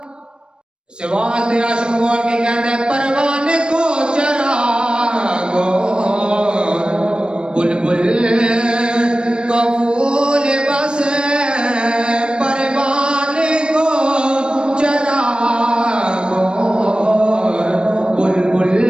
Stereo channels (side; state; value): left; late; 0.052 ms